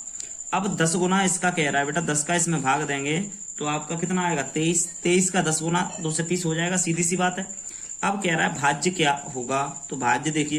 अब 10 गुना इसका कह रहा है बेटा, 10 का इसमें भाग देंगे तो आपका कितना आएगा 23। 23 का 10 गुना 2 से 30 हो जाएगा, सीधी सी बात है। अब कह रहा है भाज्य क्या होगा, तो भाज्य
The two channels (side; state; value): both; identical; correlation 1.00